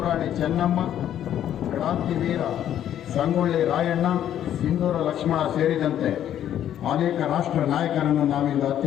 ರಾಣಿ ಚೆನ್ನಮ್ಮ, ಕ್ರಾಂತಿವೀರ ಸಂಗೊಳ್ಳಿ ರಾಯಣ್ಣ, ಸಿಂಧೂರ ಲಕ್ಷ್ಮಣ ಸೇರಿದಂತೆ ಅನೇಕ ರಾಷ್ಟ್ರ ನಾಯಕರನ್ನು ನಾವಿಂದು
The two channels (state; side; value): quieter; right; 10.8 dB